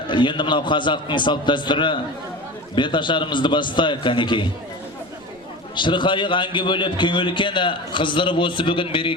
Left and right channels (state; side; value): noise; right; rumble, 29 dB below the sound